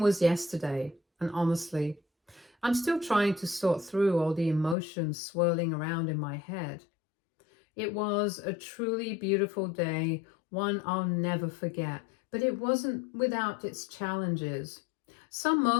yesterday, and honestly, I'm still trying to sort through all the emotions swirling around in my head. It was a truly beautiful day, one I'll never forget, but it wasn't without its challenges. Some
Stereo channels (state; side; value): drops out; right; at 4.8 s